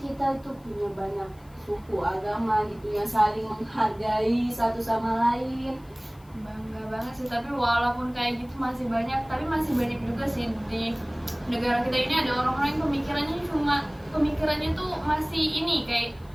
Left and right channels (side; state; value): left; noise; hiss, 30 dB below the sound